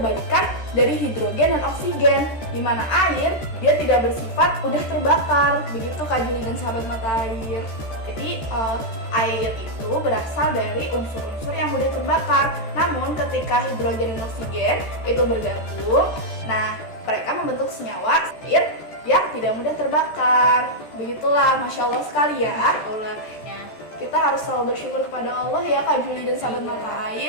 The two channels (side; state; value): right; late; 14 ms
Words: dari hidrogen dan oksigen. Di mana air, dia tidak bersifat mudah terbakar. Begitu, Kak Juli dan sahabat mata air. Jadi, air itu berasal dari unsur-unsur yang mudah terbakar. Namun, ketika hidrogen dan oksigen itu bergabung, nah, mereka membentuk senyawa air yang tidak mudah terbakar. Begitulah, Masya Allah sekali ya. Masya Allah. Ya. Kita harus selalu bersyukur kepada Allah ya, Kak Juli dan sahabat mata